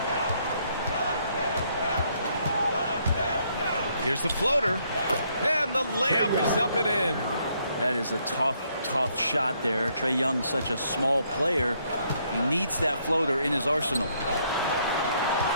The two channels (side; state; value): both; inverted; correlation -0.71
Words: Here's the floater, and the layup is up and in. That is a tough shot there. Trae Young, such a small player. He needs that floater in his arsenal.